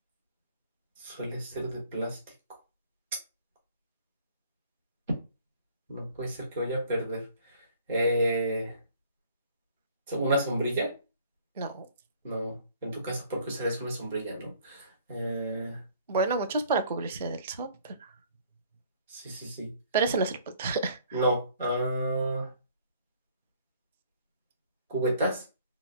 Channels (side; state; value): both; inverted; correlation -0.56